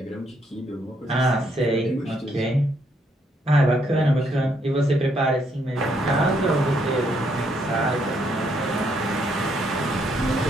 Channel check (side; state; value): both; normal; correlation 0.73